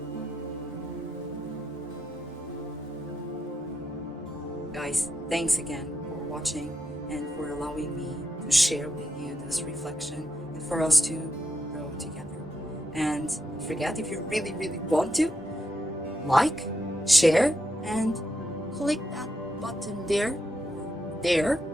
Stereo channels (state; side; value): normal; both; correlation 0.83